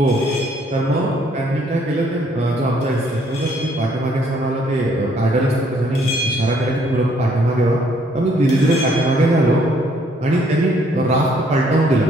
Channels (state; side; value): normal; both; correlation 0.65